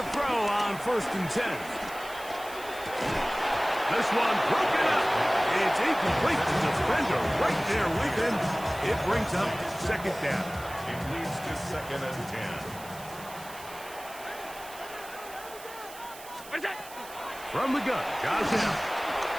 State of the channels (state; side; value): noise; right; hiss, 16 dB below the sound